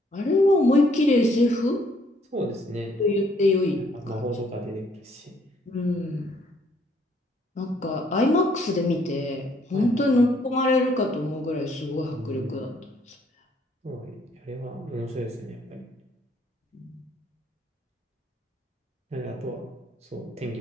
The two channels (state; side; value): normal; both; correlation 0.66